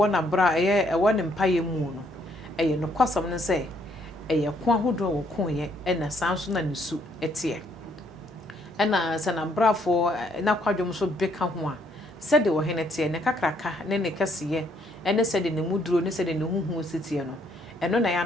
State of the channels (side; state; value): both; normal; correlation 0.69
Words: na bra e wo ne mpaye mu no eye no kwasam no se eye ko ahodo wo ko ye e na sanso na ne su etie ena se na brafo na kwadwom so beka ho a se de wo hene tie ne kakraka ne kasiye ene se de ne muduro ne se de ne huhu sitie no eno na ya